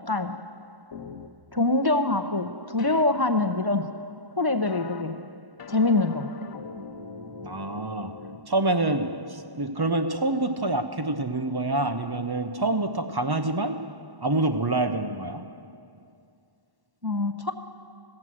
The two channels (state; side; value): late; left; 1.1 ms